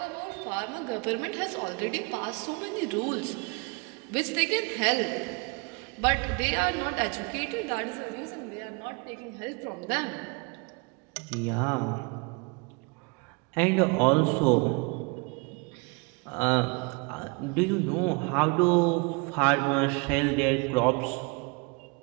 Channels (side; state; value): left; quieter; 30.4 dB